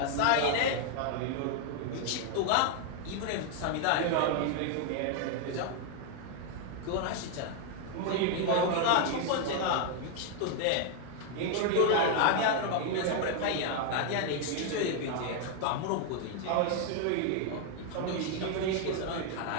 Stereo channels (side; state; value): both; different; correlation 0.00